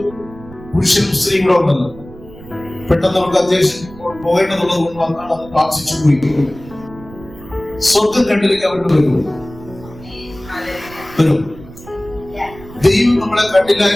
പുരുഷനും സ്ത്രീയും കൂടെ ഉണ്ടല്ലോ. പെട്ടെന്ന് നമുക്ക് അത്യാവശ്യം പോകേണ്ടതുള്ളത് കൊണ്ട് വന്നാണ് അത് പ്രാർത്ഥിച്ചു പോയി. സ്വർഗം കണ്ടിലേക്ക് അവരുടെ വരും. ദൈവം നമ്മളെ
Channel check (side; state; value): right; noise; rumble, 18 dB below the sound